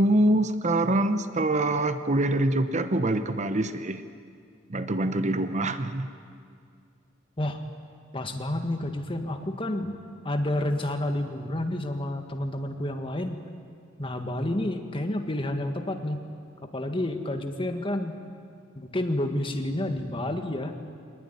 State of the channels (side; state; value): both; normal; correlation 0.66